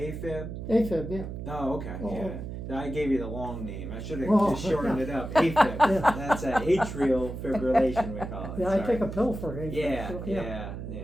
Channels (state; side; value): noise; right; hum, 7 dB below the sound